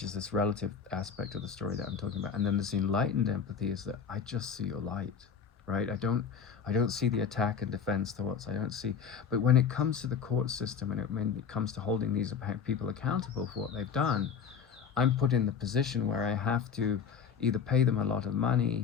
is this relative aspect of the story that I'm talking about. And then this enlightened empathy is that I just see your light, right? I don't see the attack and defense thoughts. I don't see, but when it comes to the court system and when it comes to holding these people accountable for what they've done, I'm put in the position where I have to either pay them a lot of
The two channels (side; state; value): right; quieter; 6.9 dB